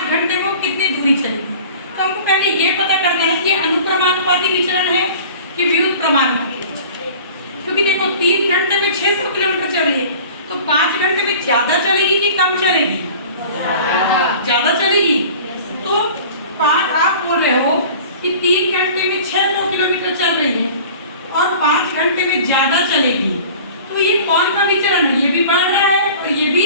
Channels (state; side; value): inverted; both; correlation -0.43